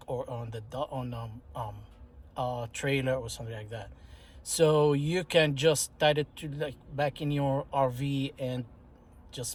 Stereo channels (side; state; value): both; identical; correlation 1.00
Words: or on the trailer or something like that. So you can just tie it to, like, back in your RV and